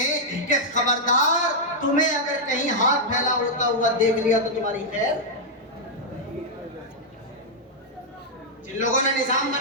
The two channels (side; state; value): both; normal; correlation -0.05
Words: کہ خبردار، تمہیں اگر کہیں ہاتھ پھیلا ہوتا ہوا دیکھ لیا تو تمہاری خیر۔ جن لوگوں نے نظام